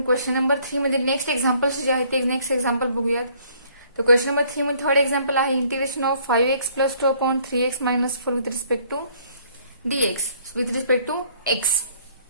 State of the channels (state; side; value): inverted; both; correlation -0.61